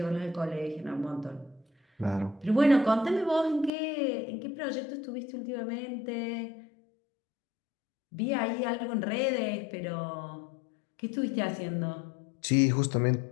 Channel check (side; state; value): right; drops out; at 3.7 s